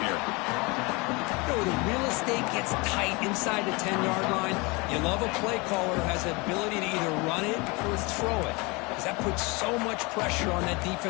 here. You know, the real estate gets tight inside the 10-yard line. You love a play caller who has the ability to either run it or throw it, because that puts so much pressure on that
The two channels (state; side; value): quieter; right; 26.7 dB